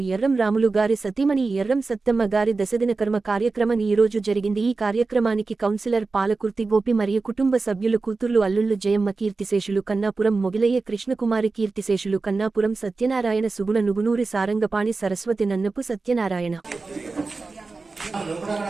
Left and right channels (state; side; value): quieter; left; 3.9 dB